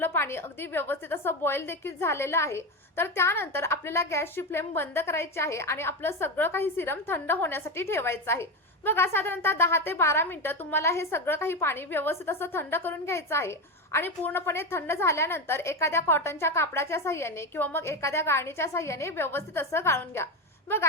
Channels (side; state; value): both; normal; correlation 0.16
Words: पाणी अगदी व्यवस्थित असं बॉईल देखील झालेलं आहे. तर त्यानंतर आपल्याला गॅसची फ्लेम बंद करायची आहे आणि आपलं सगळं काही सिरम थंड होण्यासाठी ठेवायचं आहे. बघा साधारणतः 10 ते 12 मिनिटं तुम्हाला हे सगळं काही पाणी व्यवस्थित असं थंड करून घ्यायचं आहे. आणि पूर्णपणे थंड झाल्यानंतर एखाद्या कॉटनच्या कापडाच्या साहाय्याने किंवा मग एखाद्या गाळणीच्या साहाय्याने व्यवस्थित असं गाळून घ्या.